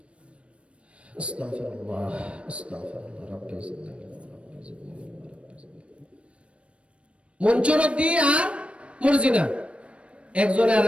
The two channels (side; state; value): left; late; 0.060 ms